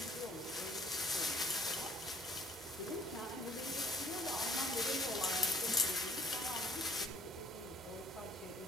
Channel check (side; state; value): both; normal; correlation 0.56